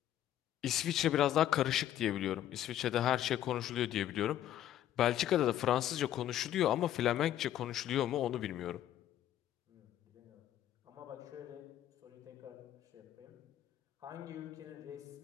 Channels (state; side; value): quieter; right; 12.0 dB